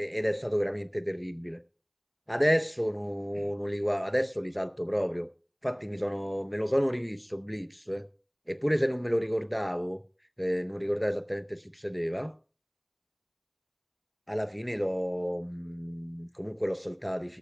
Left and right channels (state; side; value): identical; both; correlation 1.00